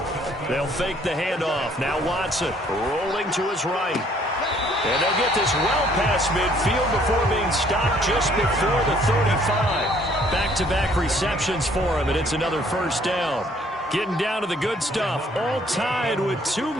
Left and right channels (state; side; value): normal; both; correlation 0.61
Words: They'll fake the handoff. Now Watson rolling to his right. And they'll get this well past midfield before being stopped just before the 35. Back-to-back receptions for him, and it's another 1st down. Getting down to the good stuff. All tied with 2